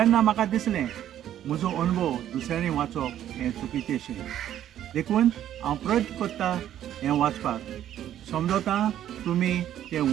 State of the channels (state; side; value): quieter; left; 11.3 dB